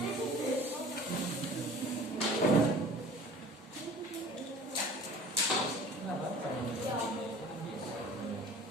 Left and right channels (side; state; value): both; normal; correlation 0.44